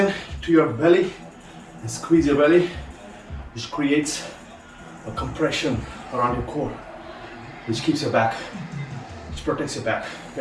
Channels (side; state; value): both; identical; correlation 1.00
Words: to your belly and squeeze your belly, which creates a compression around your core, which keeps your back, which protects your back,